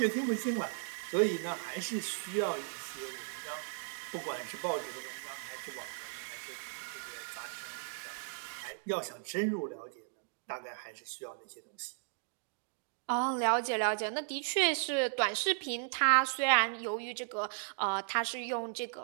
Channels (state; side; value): silent; left; digital silence